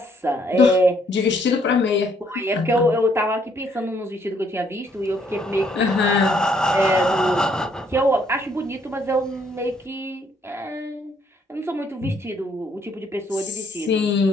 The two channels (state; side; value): normal; both; correlation 0.68